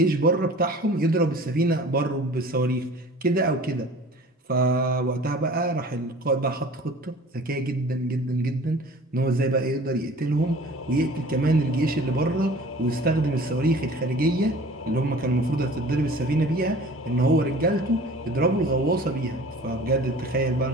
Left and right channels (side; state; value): both; normal; correlation 0.45